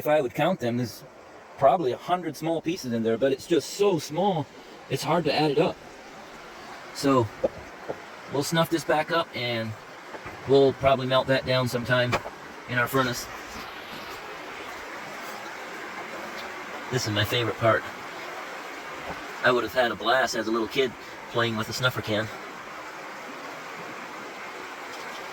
I would count them, there's probably 100 small pieces in there, but it's just so small, it's hard to add it up. So, we'll snuff this back up and we'll probably melt that down sometime in our furnace. This is my favorite part. I would have had a blast as a little kid playing with a snuffer can.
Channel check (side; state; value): both; identical; correlation 1.00